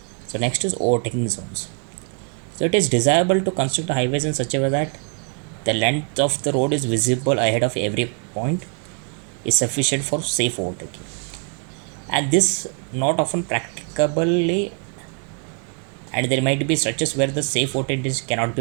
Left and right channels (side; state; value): left; quieter; 39.8 dB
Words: So next is overtaking zones. So it is desirable to construct highways in such a way that the length of the road is visible ahead of every point is sufficient for safe overtaking. And this not often practicably, and there might be stretches where the safe voltage cannot